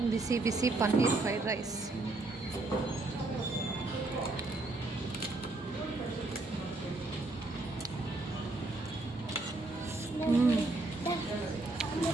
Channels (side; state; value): left; quieter; 3.0 dB